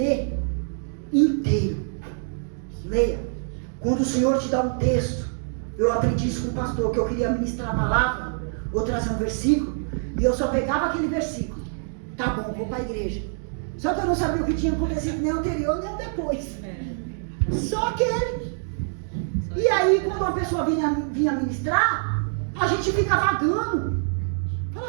inteiro. Leia. Quando o Senhor te dá um texto, eu aprendi isso com o pastor, que eu queria ministrar a palavra, ou trazer um versículo, e eu só pegava aquele versículo. Tá bom, vou para a igreja. Só que eu não sabia o que tinha acontecido nem anterior, nem depois. Só aquele. E aí, quando uma pessoa vinha ministrar, a gente fica vagando.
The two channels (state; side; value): silent; left; digital silence